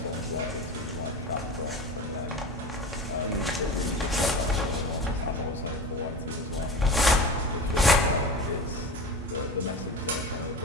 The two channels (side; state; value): both; normal; correlation 0.31